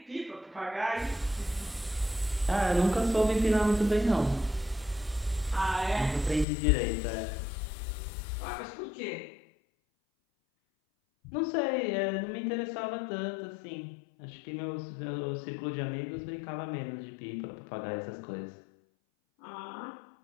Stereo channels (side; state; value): right; drops out; at 6.5 s